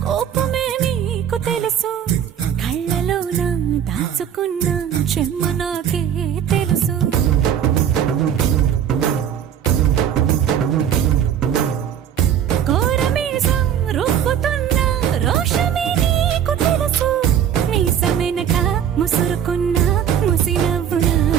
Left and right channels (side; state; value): left; quieter; 9.2 dB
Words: కోపమే నీకు తెలుసు, కళ్ళలోన దాచుకున్న చెమ్మ నాకే తెలుసు. కోరమీసం రుబ్బుతున్న రోషమే నీకు తెలుసు, మీసమెనక ముసురుకున్న ముసి నవ్వు